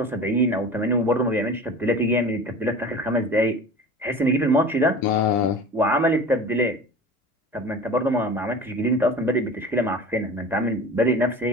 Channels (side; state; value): both; normal; correlation 0.37